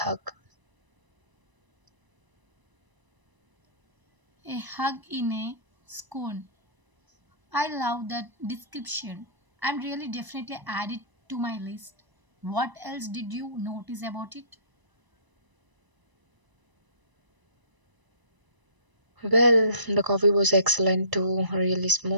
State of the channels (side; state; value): left; late; 1.0 ms